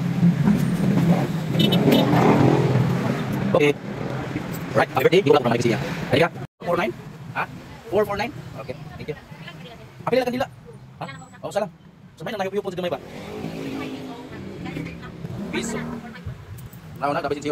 Okay. Right, happy birthday. Di ko lang naman siya. Halika. 49? Ha? 449? Okay, thank you. Apil lang kanila. Ha? Oh, salam. Sumay na nahiyup-yup po sa gamay ba? Piso. Nauna, dapat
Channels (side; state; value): both; identical; correlation 1.00